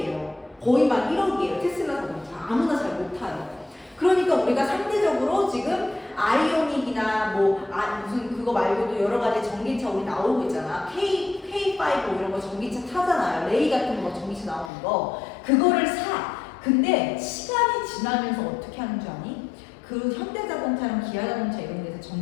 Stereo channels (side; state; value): right; drops out; at 14.7 s